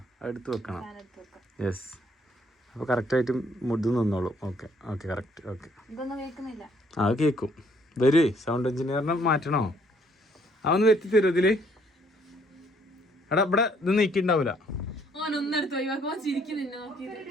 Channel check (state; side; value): normal; both; correlation 0.65